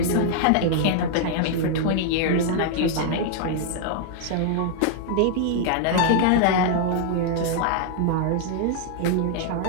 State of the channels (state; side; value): different; both; correlation -0.01